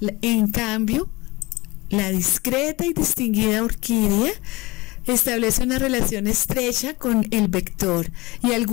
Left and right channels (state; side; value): quieter; right; 22.4 dB